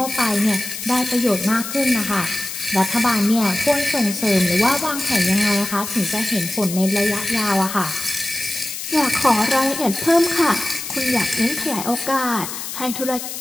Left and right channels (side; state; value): left; noise; hiss, 7 dB below the sound